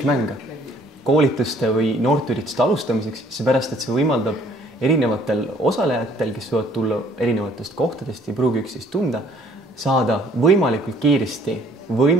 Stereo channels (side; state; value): both; normal; correlation 0.59